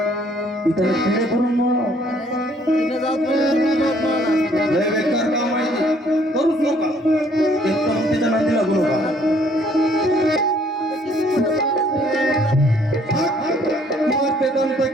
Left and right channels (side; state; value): both; normal; correlation 0.62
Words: ती त्याला किडे करून लय बेकार काम आहे करूच नका एकदम त्याच्या नांदी लागू नका